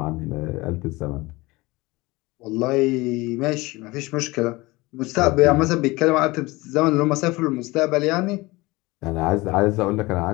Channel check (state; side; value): quieter; right; 22.0 dB